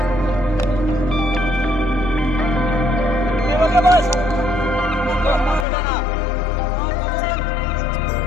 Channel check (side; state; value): right; drops out; at 5.7 s